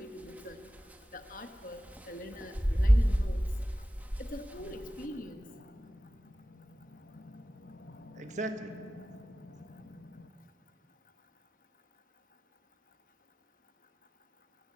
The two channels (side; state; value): both; normal; correlation 0.95